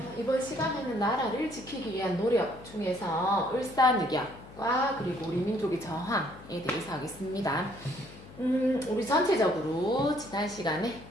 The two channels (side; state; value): left; noise; hum, 19 dB below the sound